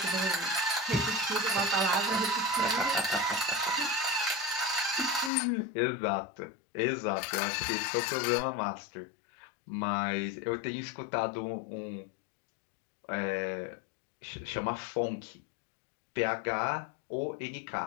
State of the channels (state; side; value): drops out; right; at 5.3 s